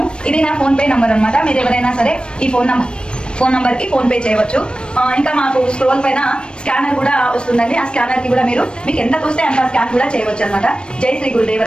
ఇది నా ఫోన్పే నంబర్ అనమాట. మీరు ఎవరైనా సరే ఈ ఫోన్ నంబర్కి ఫోన్పే చేయవచ్చు. ఇంకా మాకు స్క్రోల్ పైన స్కానర్ కూడా వస్తుందండి. ఆ స్కానర్కి కూడా మీకు ఎంత తోస్తే అంత స్కాన్ కూడా చేయవచ్చు అనమాట. జై శ్రీ గురుదేవ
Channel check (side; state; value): right; late; 0.055 ms